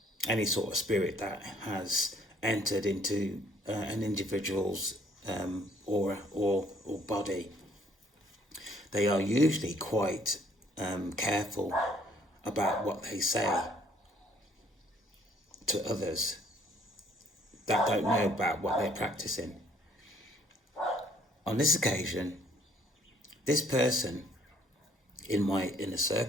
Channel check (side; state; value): both; normal; correlation 0.63